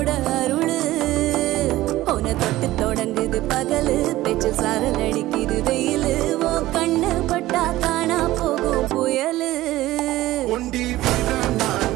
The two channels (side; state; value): left; quieter; 16.5 dB